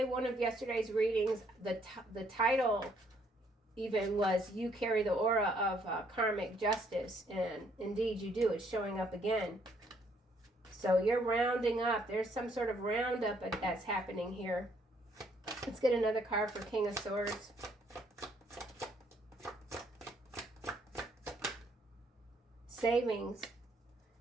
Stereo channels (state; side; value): normal; both; correlation 0.67